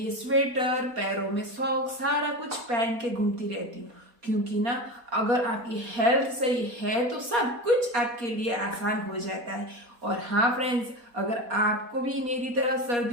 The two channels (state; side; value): late; left; 4.2 ms